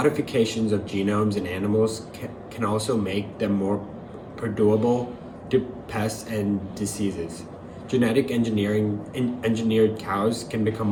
of genomes in animals can also make them more perdurable to pests and diseases. Genetic engineered cows can become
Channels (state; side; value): identical; both; correlation 1.00